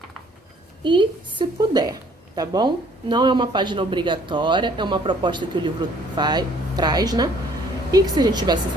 e se puder, tá bom? Não é uma página obrigatória, é uma proposta que o livro traz, né? E que se a gente tivesse em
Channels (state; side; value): normal; both; correlation 0.59